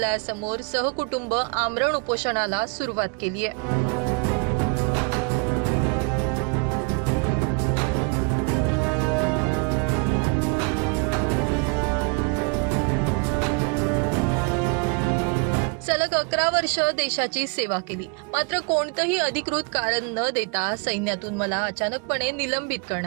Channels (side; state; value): left; quieter; 34.1 dB